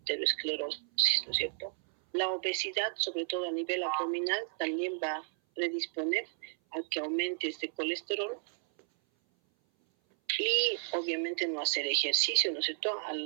¿no es cierto? La obesidad, sobre todo a nivel abdominal, también va a predisponer a que aumente este colesterol. Y obviamente no hacer ejercicio, ¿no es cierto?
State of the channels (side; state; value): left; silent; 56 dB below the other